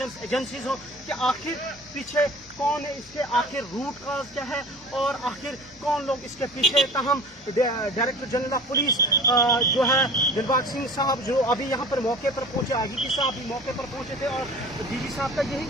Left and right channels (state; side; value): normal; both; correlation 0.40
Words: एजेंसीज हो, कि आखिर पीछे कौन है, इसके आखिर रूट काज क्या है और आखिर कौन लोग इसके पीछे। ताहम डायरेक्टर जनरल ऑफ पुलिस जो है दिलबाग सिंह साहब, जो अभी यहाँ पर मौके पर पहुंचे, IGP साहब भी मौके पर पहुंचे थे, और DG साहब का